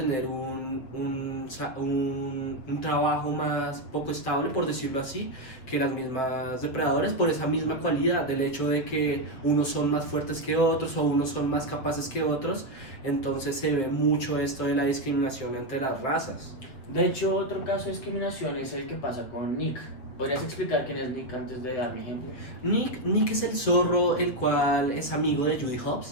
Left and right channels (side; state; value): right; late; 7.5 ms